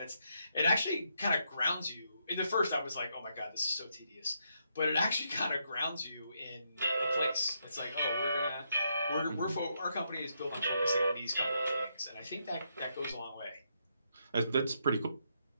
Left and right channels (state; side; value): inverted; both; correlation -0.78